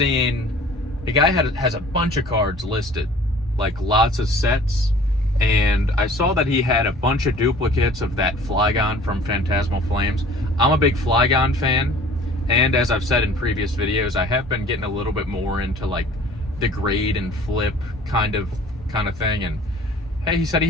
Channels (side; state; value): both; normal; correlation 0.49